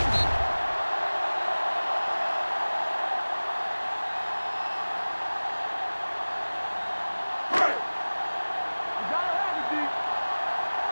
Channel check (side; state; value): both; inverted; correlation -1.00